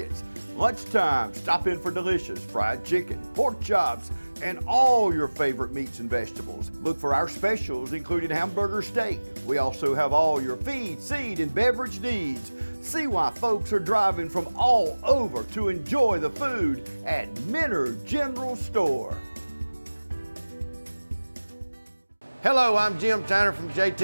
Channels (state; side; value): inverted; both; correlation -1.00